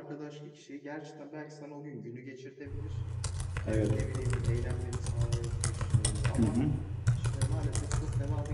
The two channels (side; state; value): both; identical; correlation 1.00